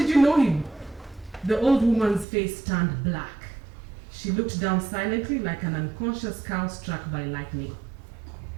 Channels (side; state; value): left; drops out; at 2.2 s